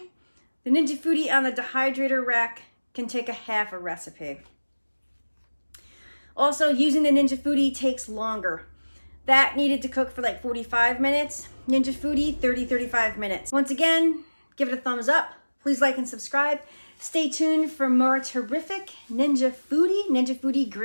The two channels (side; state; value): both; inverted; correlation -1.00